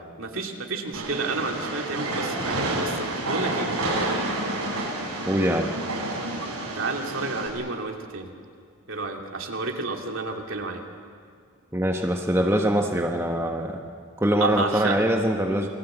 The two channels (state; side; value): normal; both; correlation 0.44